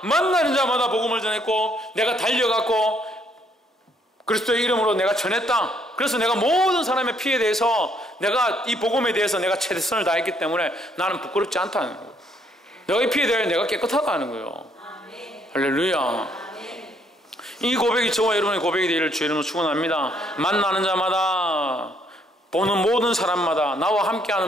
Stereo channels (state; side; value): normal; both; correlation 0.69